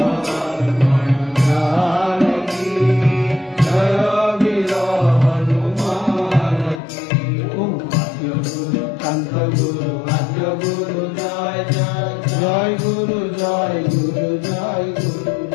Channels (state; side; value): drops out; right; at 6.8 s